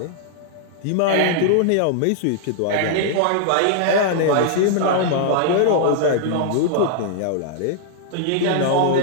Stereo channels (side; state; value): both; different; correlation -0.01